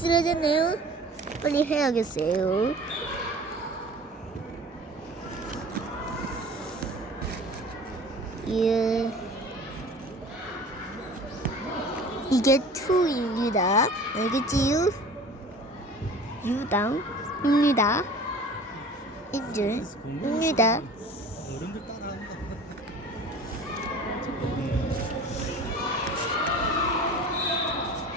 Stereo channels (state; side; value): normal; both; correlation 0.43